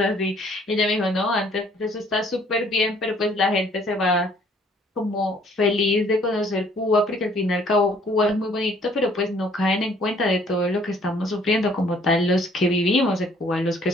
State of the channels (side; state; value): both; normal; correlation 0.60